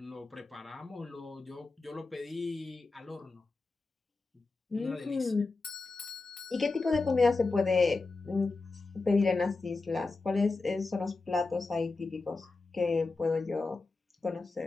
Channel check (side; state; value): right; quieter; 3.7 dB